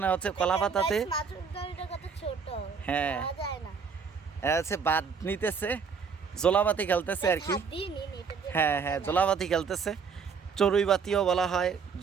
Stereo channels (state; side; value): quieter; left; 5.8 dB